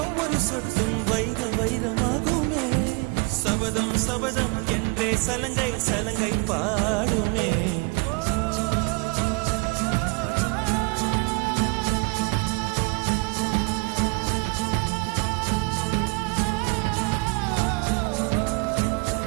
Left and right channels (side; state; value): left; quieter; 29.8 dB